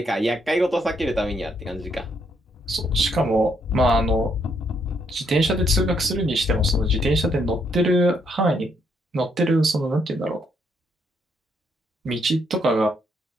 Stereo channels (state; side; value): normal; both; correlation 0.73